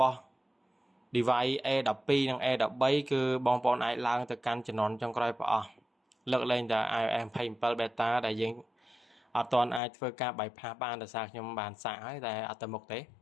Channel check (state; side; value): drops out; right; at 9.8 s